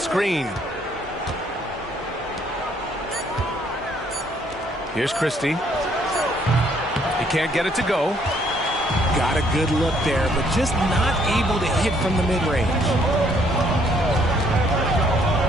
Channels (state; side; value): normal; both; correlation 0.66